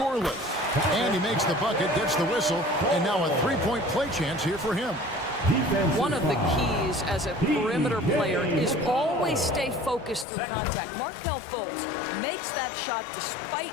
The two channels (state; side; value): drops out; right; at 10.2 s